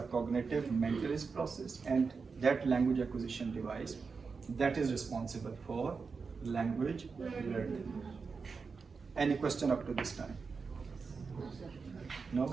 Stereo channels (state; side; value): quieter; left; 5.0 dB